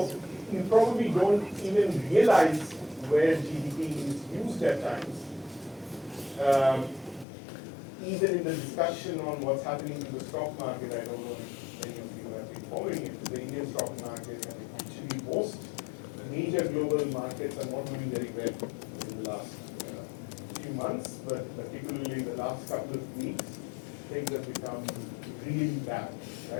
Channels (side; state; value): right; drops out; at 7.2 s